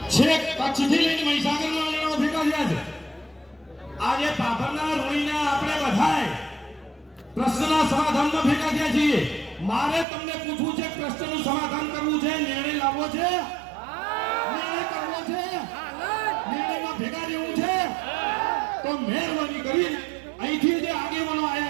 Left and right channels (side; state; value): left; drops out; at 10.1 s